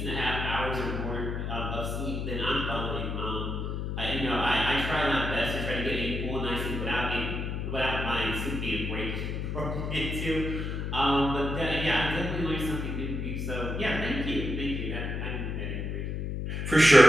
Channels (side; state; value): left; noise; hum, 3 dB below the sound